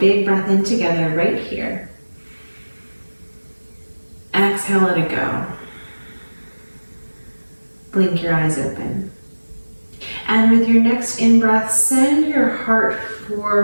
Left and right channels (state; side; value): inverted; both; correlation -1.00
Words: breath in together right here. Exhale, let it go. Blink your eyes open. And with your next in-breath, send your heart